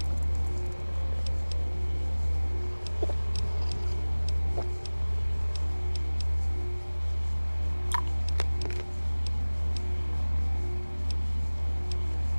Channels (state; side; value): inverted; both; correlation -1.00